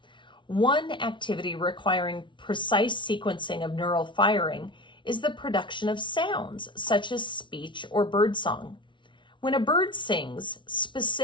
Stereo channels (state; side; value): late; right; 0.24 ms